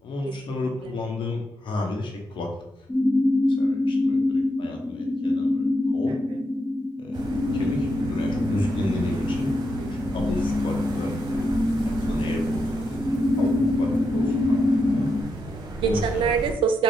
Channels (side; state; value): both; normal; correlation 0.83